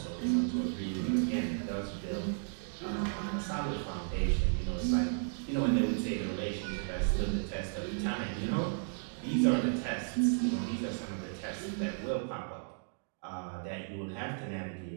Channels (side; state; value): left; silent; digital silence